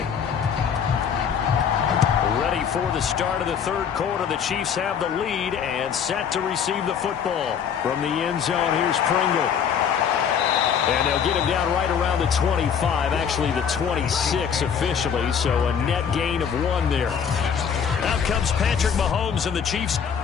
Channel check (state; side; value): quieter; right; 7.5 dB